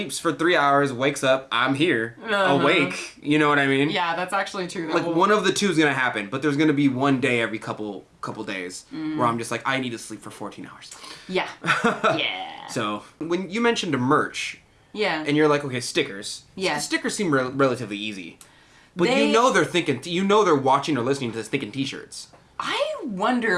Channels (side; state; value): both; identical; correlation 1.00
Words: for 3 hours, wakes up, I'm here, awake. You know what I mean? Yeah, that's actually true. Like, one of the two is going to happen, but there's going to be one day every couple days where I'm just like, I need to sleep for 14 hours. Yeah. Yeah. So, when you mentioned a merch, Yeah. and you're like, okay, stickers. Yeah. Stickers seem relatively easy. But They- you know they're thinking, they're watching or listening to this thinking t-shirts. I